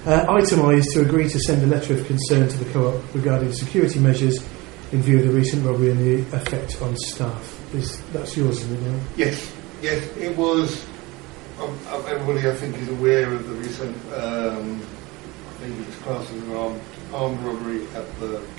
Item I is to agree to send a letter of concern to the co-op regarding security measures in view of the recent robbery and the effect on staff. That's yours, isn't it, Neil? Yes, it was. Everybody, I think, is aware of the recent. I think it was classed as an armed robbery at the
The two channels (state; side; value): quieter; left; 23.0 dB